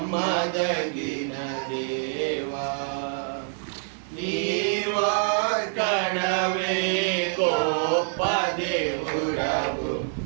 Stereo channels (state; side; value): silent; left; digital silence